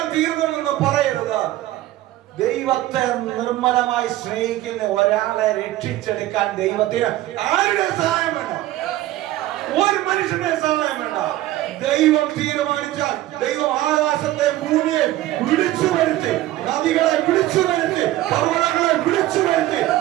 തീർന്നെന്ന് പറയരുത്. ദൈവത്തെ നിർമ്മലമായി സ്നേഹിക്കുന്ന ഒരാളെ രക്ഷിച്ചെടുക്കാൻ ദൈവത്തിന് ആരുടെ സഹായം വേണ്ട? ഒരു മനുഷ്യന്റെ സഹായം വേണ്ട. ദൈവം തീരുമാനിച്ചാൽ ദൈവം ആകാശത്തെ ഭൂമിയെ വിളിച്ചു വരുത്തി, നദികളെ വിളിച്ചു വരുത്തി, പർവ്വതങ്ങളെ വിളിച്ചു വരുത്തി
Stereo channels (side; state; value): left; quieter; 15.4 dB